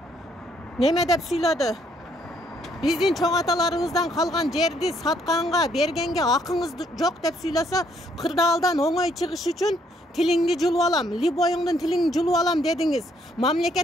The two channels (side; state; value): both; normal; correlation 0.69